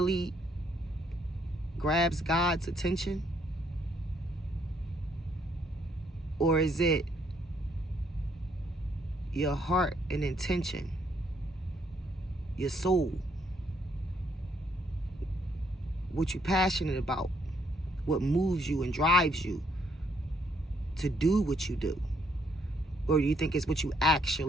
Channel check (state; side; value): normal; both; correlation 0.71